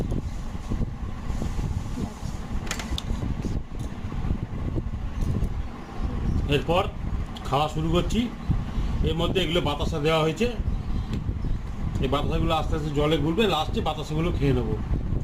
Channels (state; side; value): identical; both; correlation 1.00